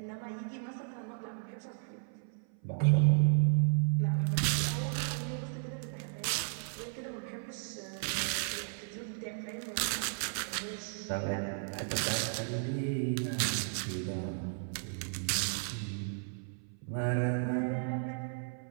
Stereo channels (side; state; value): left; silent; 55 dB below the other